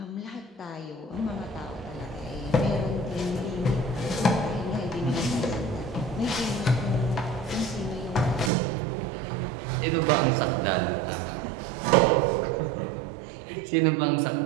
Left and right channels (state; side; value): drops out; left; at 8.5 s